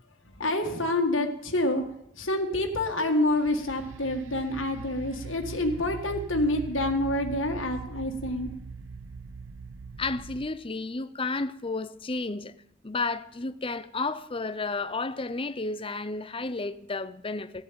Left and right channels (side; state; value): both; normal; correlation 0.19